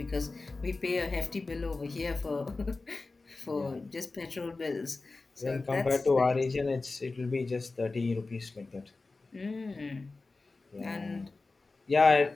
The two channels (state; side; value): quieter; right; 3.6 dB